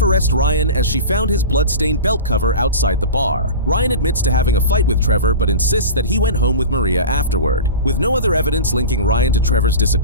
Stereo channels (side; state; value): both; inverted; correlation -0.31